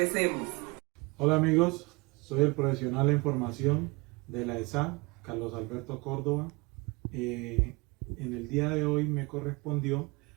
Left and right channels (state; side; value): quieter; left; 26.5 dB